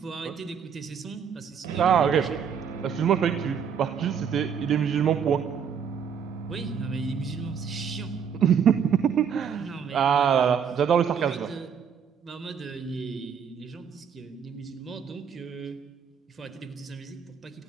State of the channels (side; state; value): left; quieter; 7.3 dB